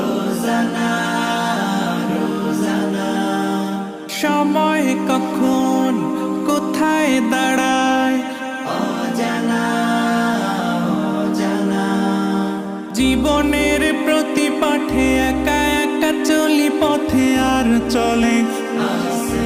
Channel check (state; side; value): identical; both; correlation 1.00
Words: রোজানা, সময় কখন কোথায় দাঁড়ায় অজানা অজানা। জীবনের প্রতি পাঠে একা একা চলি পথে, আর চলে